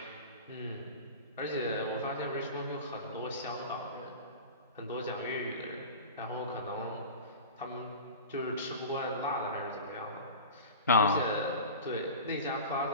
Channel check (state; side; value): inverted; both; correlation -0.33